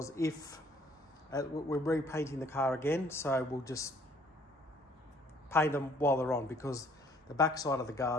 if we're repainting the car again, so we'll just paint them while they're on, because the back side of the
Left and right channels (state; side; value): normal; both; correlation 0.60